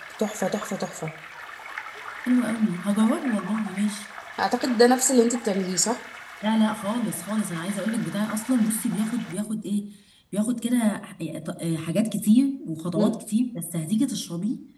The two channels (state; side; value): identical; both; correlation 1.00